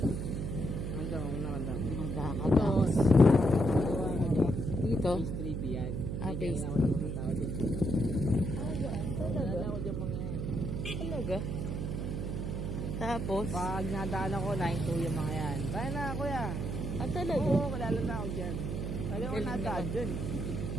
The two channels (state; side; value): noise; right; hum, 3 dB below the sound